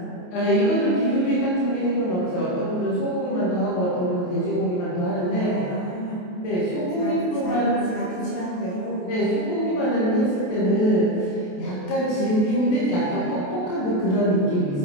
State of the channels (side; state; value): right; late; 28 ms